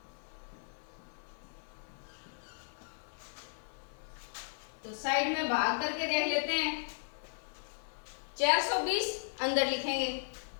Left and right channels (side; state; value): right; silent; digital silence